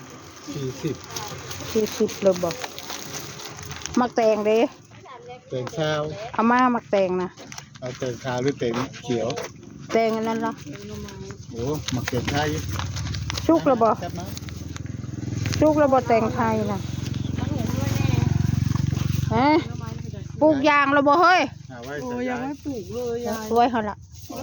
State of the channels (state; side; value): identical; both; correlation 1.00